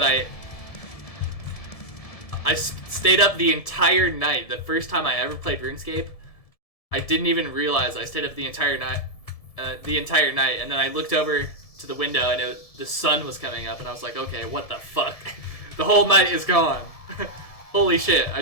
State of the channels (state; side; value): late; right; 1.7 ms